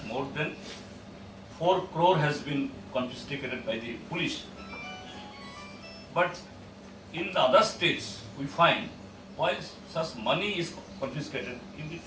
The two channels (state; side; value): identical; both; correlation 1.00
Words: more than 4 crore has been confiscated by the police. But in the other states, we find while such money is confiscated,